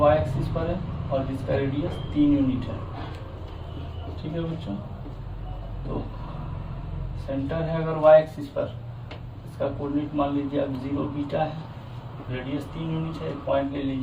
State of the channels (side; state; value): both; identical; correlation 1.00